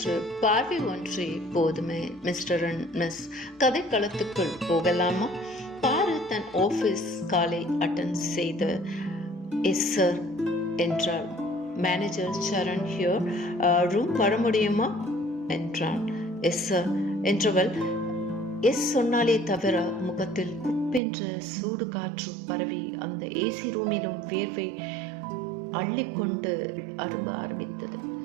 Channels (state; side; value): drops out; left; at 21.0 s